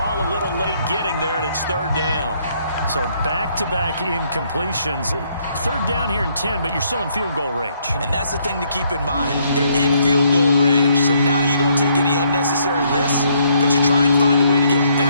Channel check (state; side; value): inverted; both; correlation -0.70